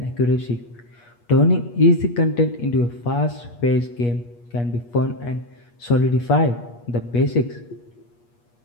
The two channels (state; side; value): late; right; 8.4 ms